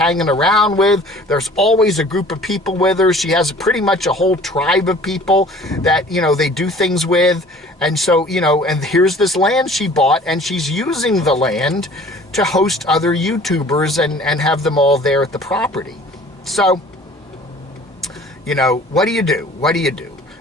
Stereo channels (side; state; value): both; normal; correlation 0.49